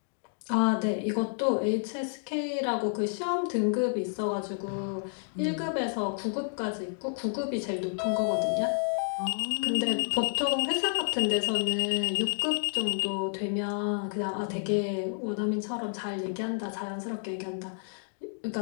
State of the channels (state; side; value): silent; right; digital silence